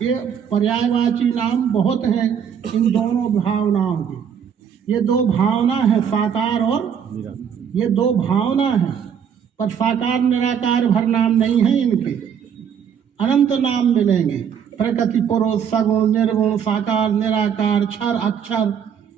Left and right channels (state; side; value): quieter; left; 7.9 dB